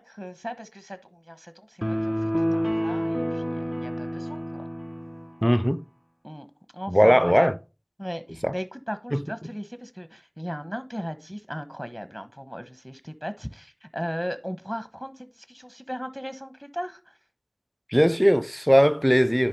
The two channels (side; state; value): both; identical; correlation 1.00